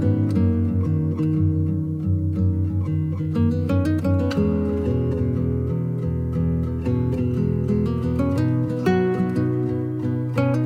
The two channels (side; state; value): both; identical; correlation 1.00